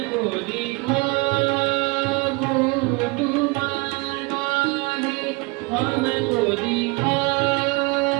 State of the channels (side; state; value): left; quieter; 26.9 dB